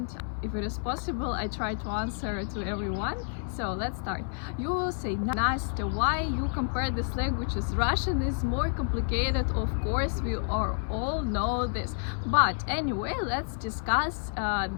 If it is possible, I try to answer to everyone. So let's start. You will say, Nastya, why you compare these languages? Russian is more complicated, of course, we all know this. But anyway, let's discuss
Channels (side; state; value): right; silent; digital silence